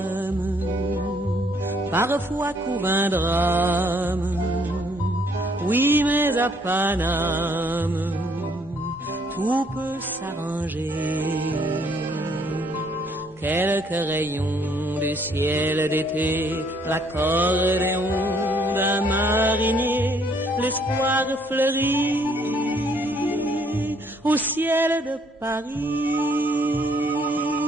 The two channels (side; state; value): both; normal; correlation 0.66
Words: parfois court un drame. Oui, mais à Paname, tout peut s'arranger. Quelques rayons du ciel d'été, l'accordéon d'un marinier, l'espoir fleurit au ciel de Paris.